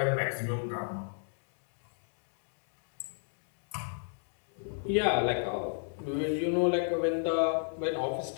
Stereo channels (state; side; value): silent; right; digital silence